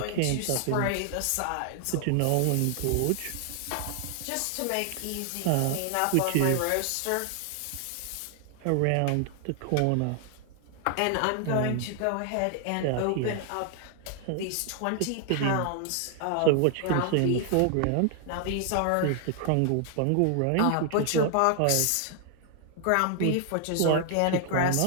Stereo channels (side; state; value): both; different; correlation 0.00